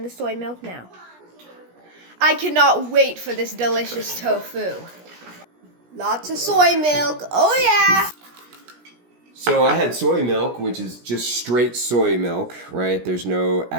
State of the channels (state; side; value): late; left; 17 ms